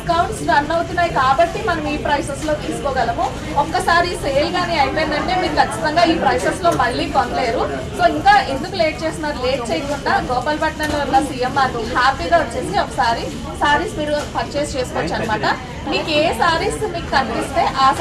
రన్ అవుతున్నాయి కాబట్టి మనం ఈ ప్రైసెస్ లో తీసుకోగలము. ఒక్కసారి సేల్ గానీ అయిపోయిందంటే మీరు ఖచ్చితంగా ఈ ప్రైసెస్ లో మళ్ళీ కొనలేరు. సో ఇంకా ఎందుకు లేట్ చేస్తున్నారు? లేట్ చేయకుండా గోపాలపట్నంలో ఉన్న సిఎంఆర్ హ్యాపీగా వచ్చేసి ఒకసారి సారీస్ మీరు పర్చేస్ చేసుకోవచ్చు అనమాట. మీకు ఏ సారీస్ మీకు కనిపిస్తే ఆ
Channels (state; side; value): identical; both; correlation 1.00